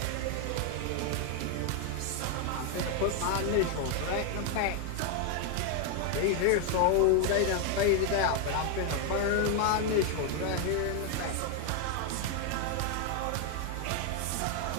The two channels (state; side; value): different; both; correlation 0.01